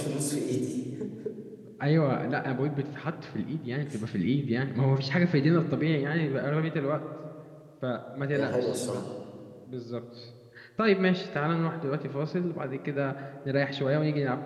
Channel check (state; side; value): identical; both; correlation 1.00